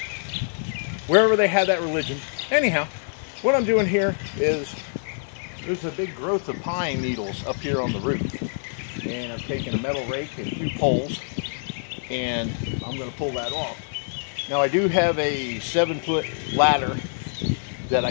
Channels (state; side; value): silent; right; digital silence